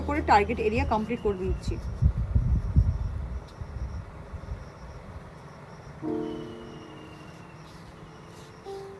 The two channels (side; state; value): both; identical; correlation 1.00